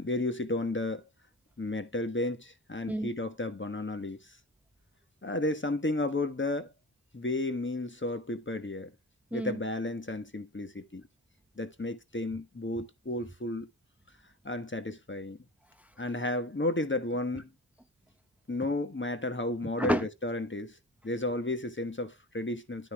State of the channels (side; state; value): both; normal; correlation 0.34